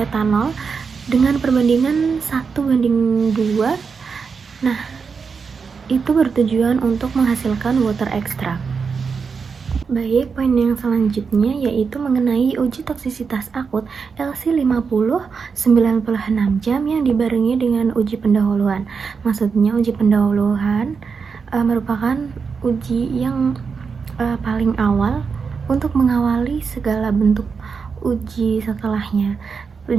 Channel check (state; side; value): quieter; left; 5.5 dB